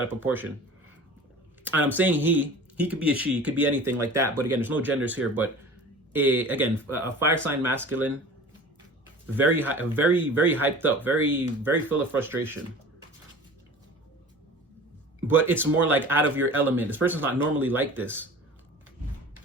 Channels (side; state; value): both; normal; correlation 0.40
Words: of proportion. And I'm saying he could be a she, could be anything like that. But again, there's no genders here. But again, a fire sign masculine, very hyped up, very full of frustration. But it's more like out of your element. This person's not normally like this.